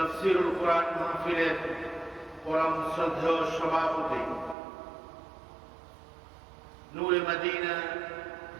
কোরআন মাহফিলের পরম শ্রদ্ধেয় সভাপতি নূরে মদিনা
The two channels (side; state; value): left; drops out; at 4.5 s